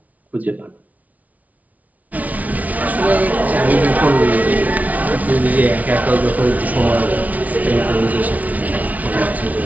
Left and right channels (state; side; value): late; left; 0.072 ms